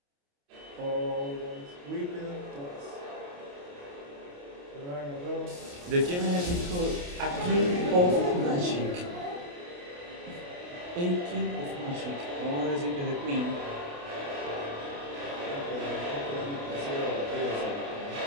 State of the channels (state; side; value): late; left; 28 ms